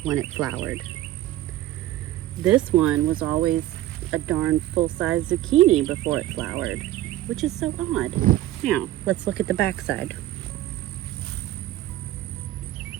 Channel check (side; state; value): left; quieter; 14.6 dB